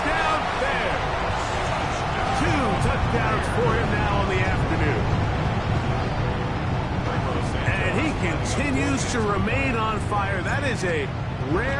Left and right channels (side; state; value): both; identical; correlation 1.00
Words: there. 2 touchdowns for him now on the afternoon. And he continues to remain on fire. That is a